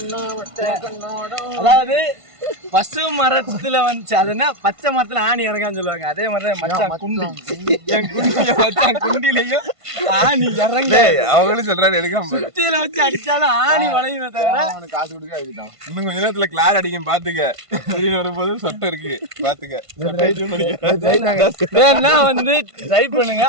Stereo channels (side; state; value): left; late; 1.5 ms